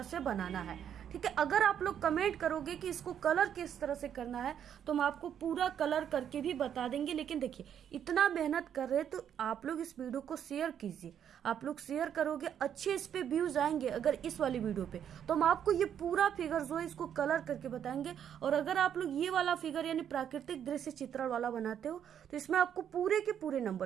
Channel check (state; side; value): quieter; left; 9.1 dB